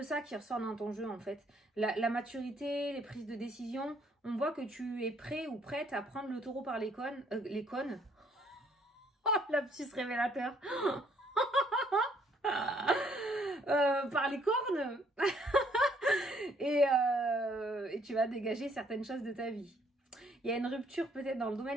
ça qui ressort dans ton jeu en fait. La maturité, les prises de décision, on voit que tu es prêt ou prête à prendre le taureau par les cônes. Oh, lapsus révélateur. Par les cornes. et tu vas dégager certaines choses de ta vie. Il y a une rupture peut-être dans le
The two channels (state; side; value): normal; both; correlation 0.66